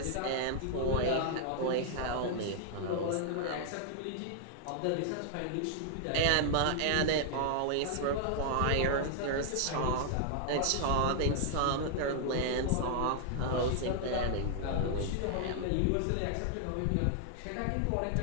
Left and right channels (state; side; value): different; both; correlation 0.00